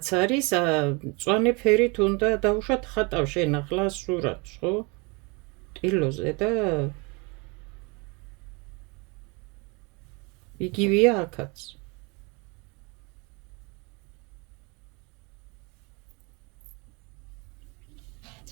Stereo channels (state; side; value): quieter; left; 29.6 dB